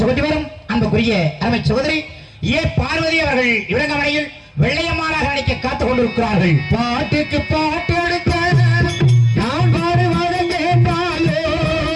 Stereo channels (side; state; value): both; identical; correlation 1.00